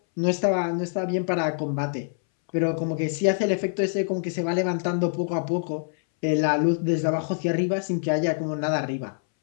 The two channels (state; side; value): silent; right; 62 dB below the other